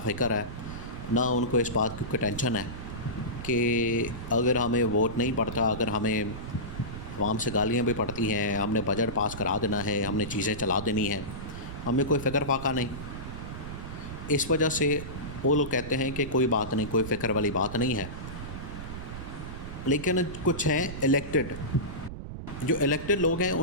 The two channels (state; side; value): noise; right; rumble, 9 dB below the sound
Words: है, ना उनको इस बात की कोई टेंशन है कि अगर हमें वोट नहीं पड़ता, अगर हमें आवाम से गालियाँ भी पड़ती हैं, हमने बजट पास करा देना है, हमने चीज़ें चला देनी हैं, हमें कोई फ़िक्र फाका नहीं। इस वजह से वो लोग कहते हैं कि कोई बात नहीं, कोई फ़िक्र वाली बात नहीं है। लेकिन कुछ हैं इलेक्टेड, जो इलेक्टेड लोग हैं